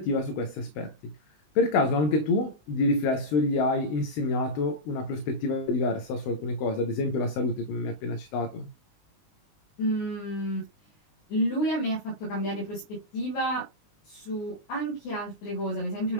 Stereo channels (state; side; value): late; right; 20 ms